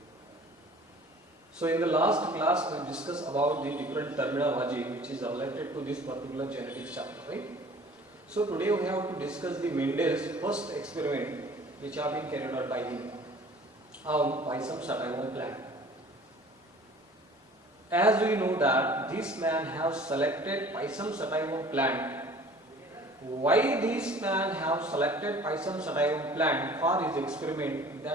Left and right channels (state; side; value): normal; both; correlation 0.48